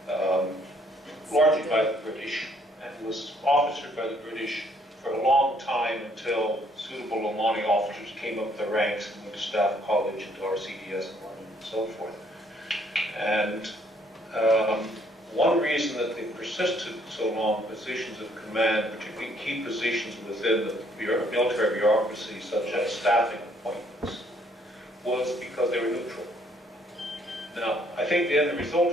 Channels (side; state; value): both; normal; correlation 0.66